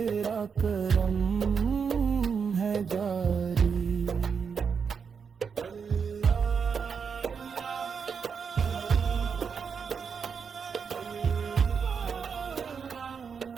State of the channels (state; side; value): quieter; left; 6.2 dB